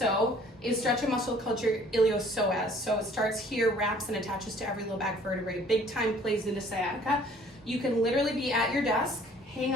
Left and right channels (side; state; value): both; normal; correlation 0.55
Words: is stretch a muscle called your iliopsoas. So it starts here, wraps and attaches to every low back vertebrae. Big time plays into sciatica. You can literally be at your desk, hang